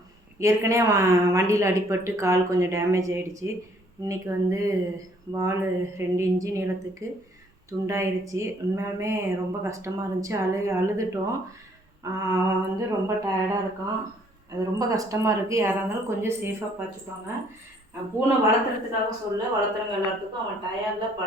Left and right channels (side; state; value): both; normal; correlation 0.63